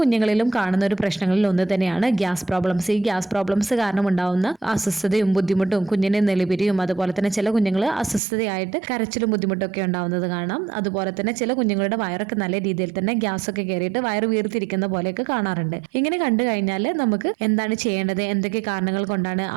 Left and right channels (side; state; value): left; drops out; at 8.2 s